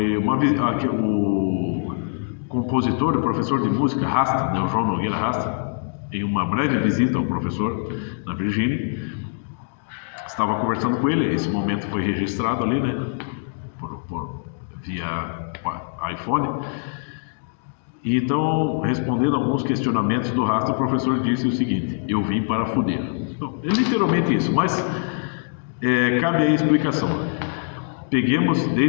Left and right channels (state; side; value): silent; right; 63 dB below the other